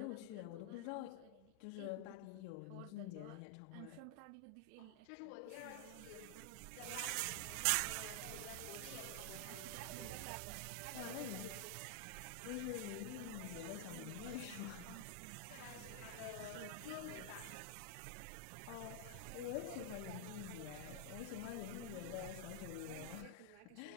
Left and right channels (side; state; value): both; different; correlation 0.00